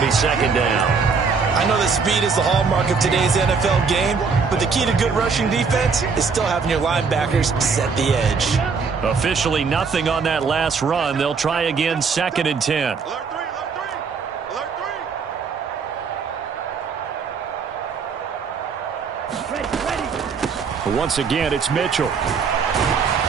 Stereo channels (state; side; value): quieter; left; 5.3 dB